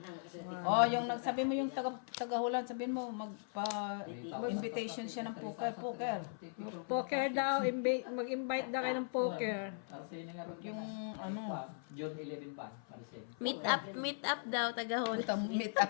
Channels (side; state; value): right; silent; 52 dB below the other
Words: Oh, yung nagsabi mo yung taga-Hulan, sabihin mo magpa-invitation siya ng poker. Poker daw. Mag-invite daw kayo ng poker. Yung ano, June 11 pa. Paresin. Meet up daw tagahon. meet up